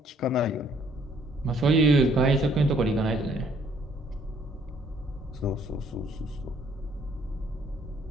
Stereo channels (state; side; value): normal; both; correlation 0.63